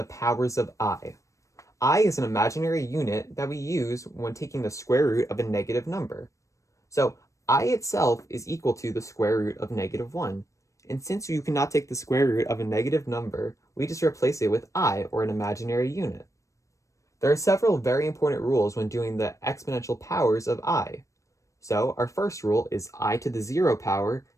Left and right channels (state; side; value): late; right; 0.15 ms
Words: powers of I. I is an imaginary unit that we use when taking the square root of a negative number. So I itself is equal to the square root of -1. And since you cannot take the square root of a negative number, we just replace it with I, or an imaginary unit. There are several very important rules when doing the exponential powers of I. So our first rule is I to the 0 power